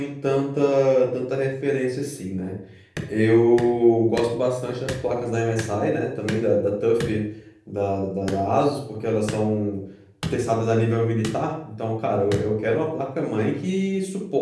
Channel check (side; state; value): both; identical; correlation 1.00